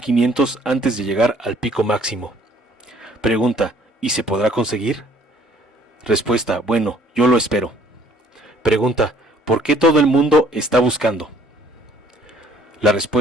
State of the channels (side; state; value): both; normal; correlation 0.59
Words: antes de llegar al pico máximo. Pregunta: ¿y se podrá conseguir? Respuesta: bueno, yo lo espero. Pregunta: ¿por qué todo el mundo está buscando? La